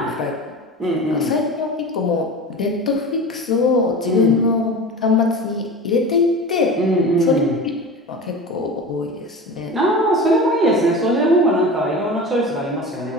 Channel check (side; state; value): both; normal; correlation 0.32